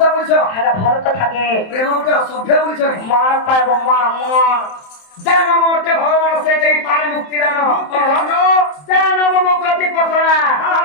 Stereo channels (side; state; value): right; late; 27 ms